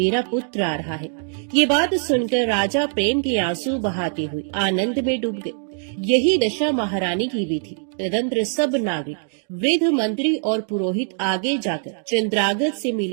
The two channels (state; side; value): silent; left; 64 dB below the other